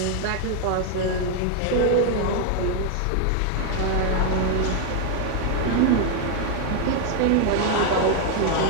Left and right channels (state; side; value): different; both; correlation 0.00